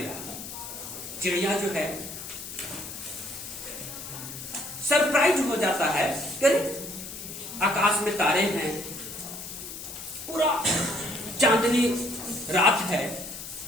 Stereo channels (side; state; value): left; noise; hiss, 10 dB below the sound